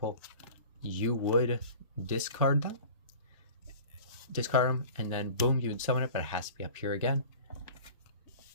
You would discard them, and then boom, you would summon it, but it has to be up here again.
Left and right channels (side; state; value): both; inverted; correlation -0.41